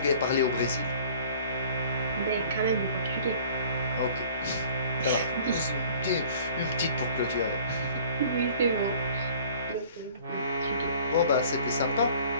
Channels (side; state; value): both; inverted; correlation -0.50